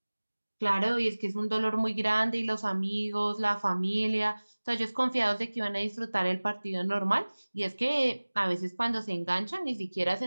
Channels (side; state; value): both; inverted; correlation -1.00